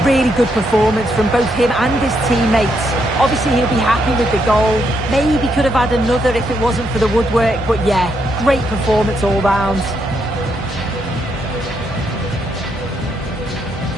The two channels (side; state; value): both; normal; correlation 0.77